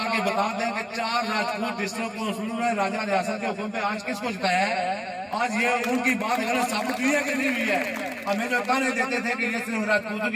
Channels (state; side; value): identical; both; correlation 1.00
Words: بتا دیں کہ 4 راجپوت ڈسٹرکٹ کونسلوں نے راجہ ریاست کے حکم پہ آج کس کو جتایا ہے؟ آج یہ ان کی بات غلط ثابت ہوئی ہے کہ نہیں ہوئی ہے؟ ہمیں جو تانے دیتے تھے کہ یہ صرف راجپوتوں